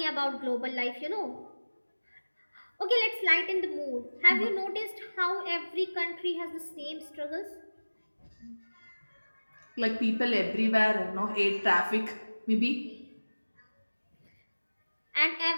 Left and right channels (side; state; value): both; inverted; correlation -1.00